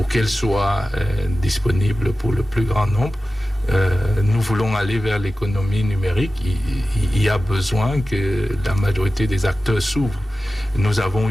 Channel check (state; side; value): normal; both; correlation 0.95